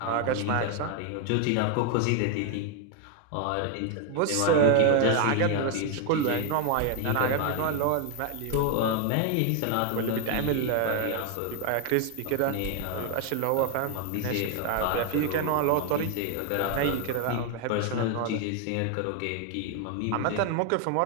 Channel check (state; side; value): different; both; correlation 0.01